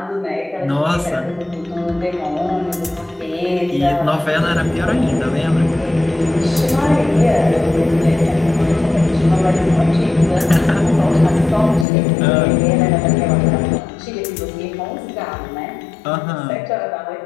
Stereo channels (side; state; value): right; drops out; at 11.9 s